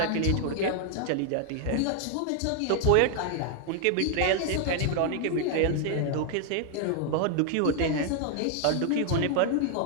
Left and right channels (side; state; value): both; different; correlation 0.00